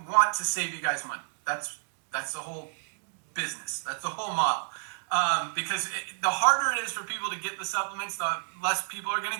want to save you guys money. That's the whole business. That's the whole model. Because the harder it is for people to get the supplements, the less people are going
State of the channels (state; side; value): silent; left; digital silence